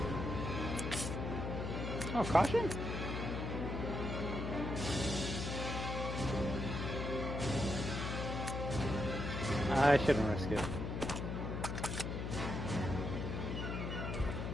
Oh, caution? I shouldn't risk it.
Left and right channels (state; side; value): noise; left; hum, 3 dB below the sound